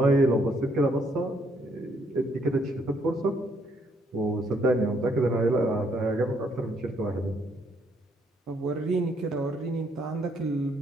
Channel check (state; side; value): normal; both; correlation 0.70